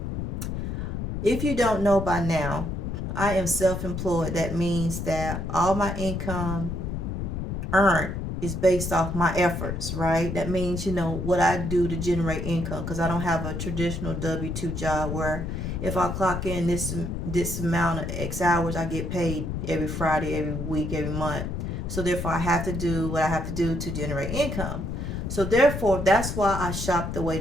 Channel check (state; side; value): noise; left; rumble, 4 dB below the sound